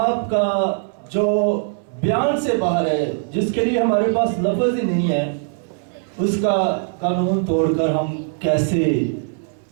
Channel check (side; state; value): left; silent; digital silence